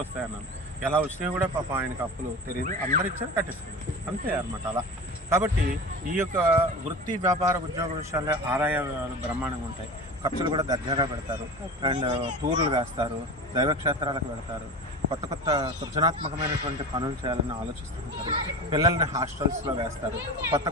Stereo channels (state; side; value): normal; both; correlation 0.31